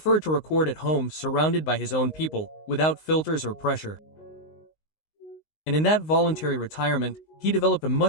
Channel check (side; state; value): right; late; 19 ms